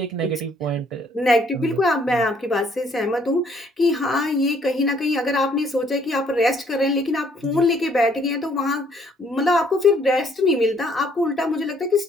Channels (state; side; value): normal; both; correlation 0.64